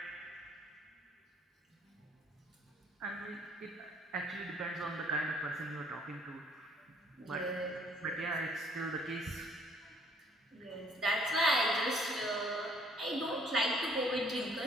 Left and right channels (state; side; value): normal; both; correlation 0.61